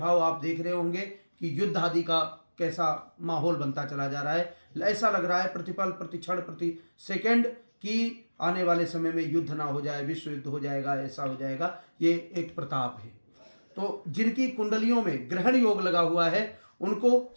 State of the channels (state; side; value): inverted; both; correlation -1.00